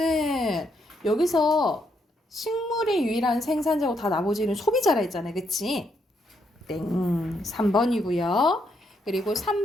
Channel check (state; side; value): normal; both; correlation 0.76